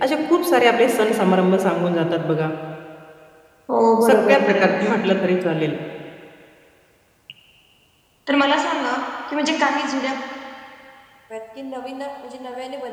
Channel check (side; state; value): both; identical; correlation 1.00